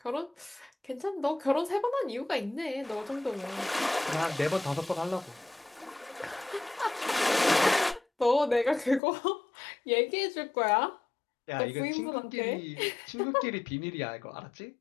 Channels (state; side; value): drops out; right; at 9.0 s